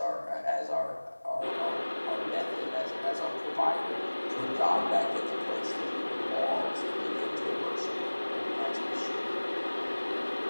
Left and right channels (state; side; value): inverted; both; correlation -1.00